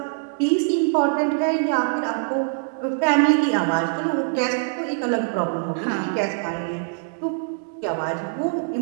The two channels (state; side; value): silent; left; 63 dB below the other